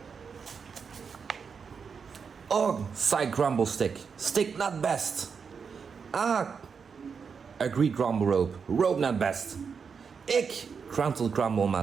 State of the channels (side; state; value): left; quieter; 6.0 dB